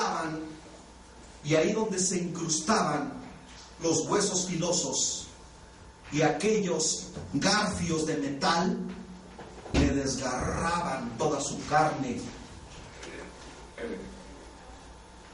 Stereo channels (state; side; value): identical; both; correlation 1.00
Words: y ahí donde se incrustaban los huesos filosos y aquellos garfios de metal, le desgarraban toda su carne,